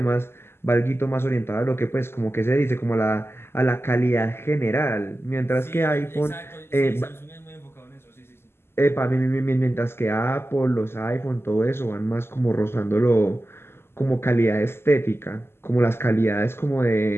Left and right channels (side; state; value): right; late; 0.12 ms